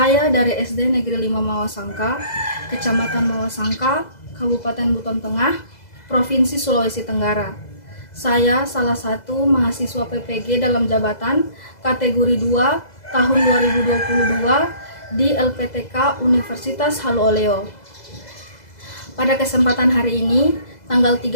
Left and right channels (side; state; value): right; late; 2.0 ms